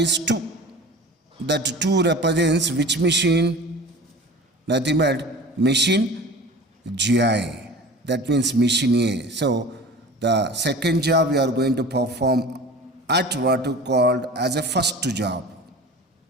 is 2. That 2 represents which machine? Nothing but machine GI. That means machine A. So, the second job we are going to perform at what you called as a first job.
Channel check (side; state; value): both; normal; correlation 0.38